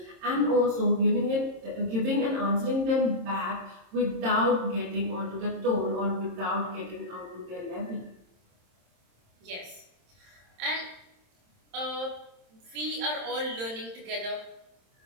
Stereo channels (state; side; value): late; left; 26 ms